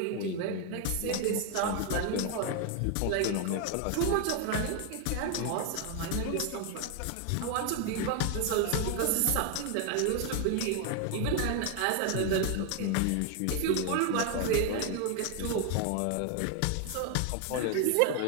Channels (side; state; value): both; different; correlation 0.00